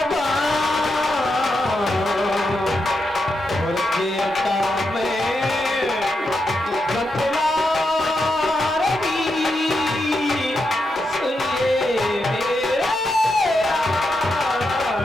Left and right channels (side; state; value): both; normal; correlation 0.85